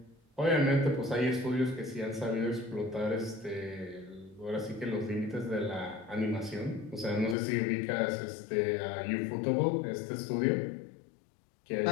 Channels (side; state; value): right; drops out; at 7.4 s